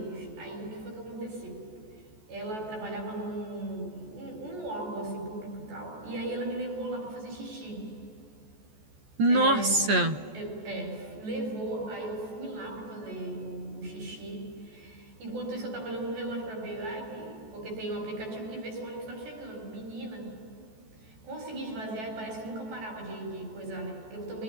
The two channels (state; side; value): late; left; 14 ms